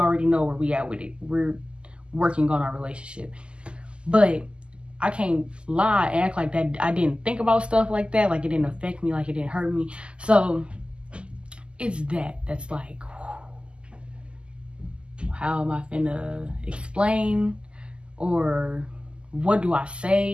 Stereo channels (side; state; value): left; late; 0.051 ms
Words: know where we at with it. We're working on our relationship. But I can't lie and act like that I didn't think about stuff like that, like it didn't affect me, like it didn't hurt me. So it's that's like, how am I finna explain, or what do I